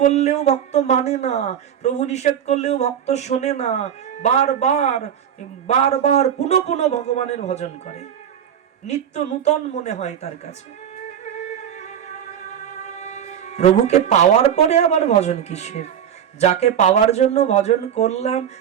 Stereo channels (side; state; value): left; quieter; 9.1 dB